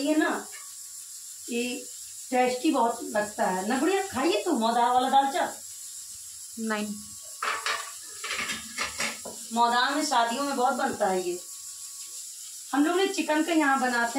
है ना कि टेस्टी बहुत लगता है ना गुड़िया। खाइए तो मौदा वाला दालचा। नहीं, मौदा में शादियों में बहुत बनता है ये। हम लोग ने चिकन का यहाँ बनाते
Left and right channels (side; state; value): both; identical; correlation 1.00